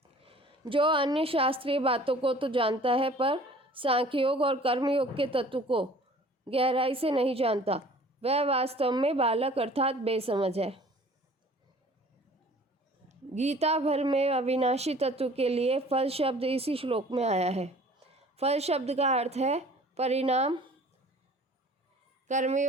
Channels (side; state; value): both; normal; correlation 0.49